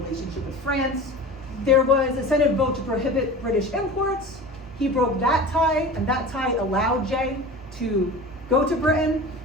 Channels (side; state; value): both; normal; correlation 0.35